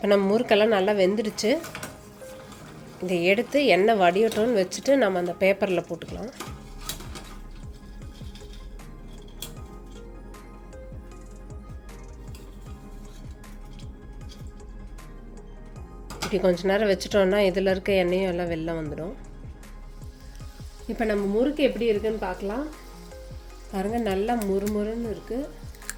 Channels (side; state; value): both; identical; correlation 1.00